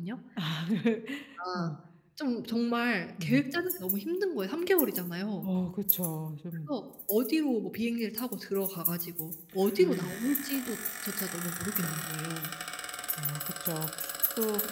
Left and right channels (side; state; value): both; identical; correlation 1.00